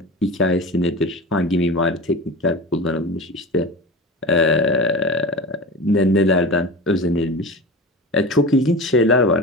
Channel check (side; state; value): both; normal; correlation 0.30